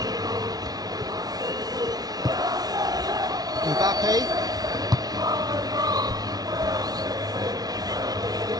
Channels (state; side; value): late; left; 0.19 ms